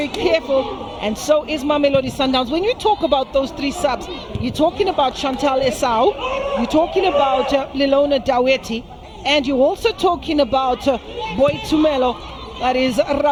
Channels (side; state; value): both; identical; correlation 1.00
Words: careful, and so is Mamelodi Sundowns. When you talk about those 3 subs, you're talking about Chantal Esau, you're talking about Lilona Daweti, and you're also talking about Boy Tumelo, that is